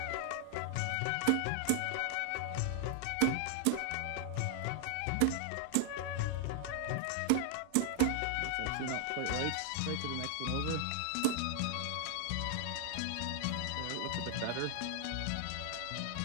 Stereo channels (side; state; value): both; different; correlation 0.00